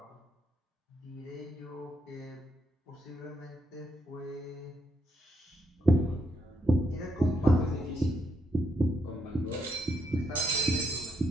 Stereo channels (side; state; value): both; normal; correlation 0.77